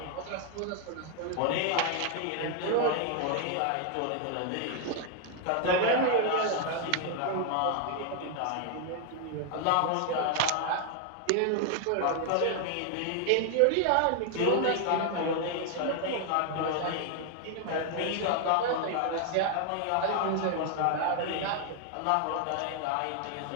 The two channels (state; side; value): different; both; correlation 0.00